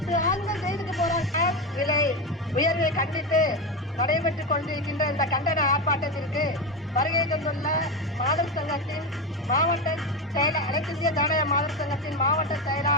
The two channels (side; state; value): both; normal; correlation 0.16